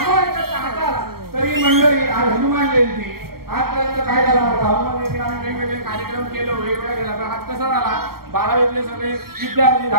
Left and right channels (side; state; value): left; late; 0.94 ms